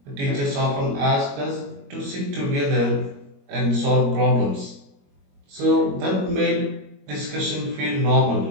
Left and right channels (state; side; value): late; left; 21 ms